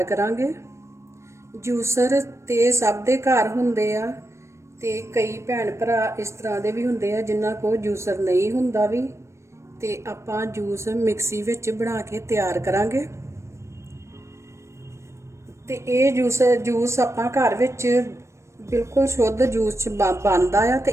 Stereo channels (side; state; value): left; late; 0.13 ms